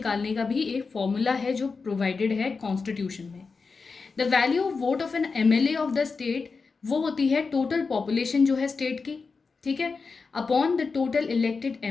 का भी एक फॉर्मूला है जो प्रोवाइडेड है कॉन्स्टिट्यूशन में. The value of vote of an MLA of the state वो होती है टोटल पॉपुलेशन जो है स्टेट की. ठीक है, upon the total elected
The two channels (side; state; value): right; quieter; 4.6 dB